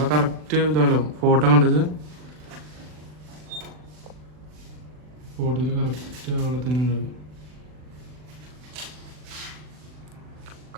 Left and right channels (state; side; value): late; left; 40 ms